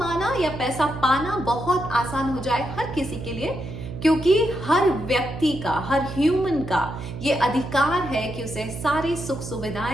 या पैसा पाना बहुत आसान हो जाए हर किसी के लिए। क्योंकि हर व्यक्ति का, हर ह्यूमन का ये अधिकार है कि उसे सारी सुख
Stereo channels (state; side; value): noise; right; hum, 9 dB below the sound